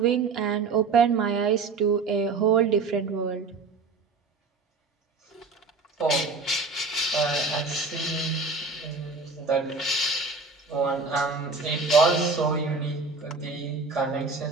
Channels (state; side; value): quieter; left; 4.3 dB